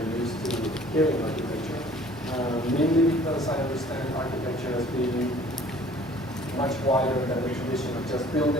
used to hearing architecture. Mainly because I understand architecture as being much wider than the tradition of just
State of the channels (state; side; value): normal; both; correlation 0.52